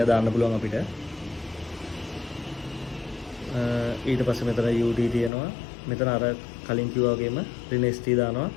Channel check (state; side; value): drops out; right; at 5.3 s